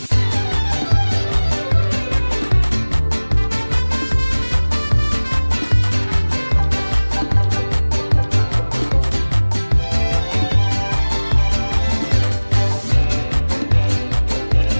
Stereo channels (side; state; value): both; inverted; correlation -1.00